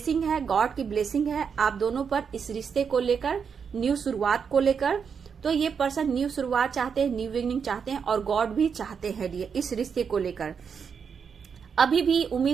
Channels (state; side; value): quieter; left; 6.5 dB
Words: है, गॉड की ब्लेसिंग है आप दोनों पर इस रिश्ते को लेकर, न्यू शुरुआत को लेकर। तो ये पर्सन न्यू शुरुआत चाहते हैं, न्यू बिगिनिंग चाहते हैं और गॉड भी चाहते हैं डियर इस रिश्ते को लेकर। अभी भी